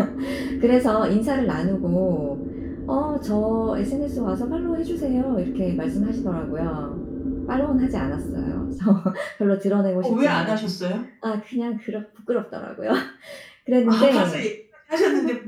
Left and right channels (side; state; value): both; identical; correlation 1.00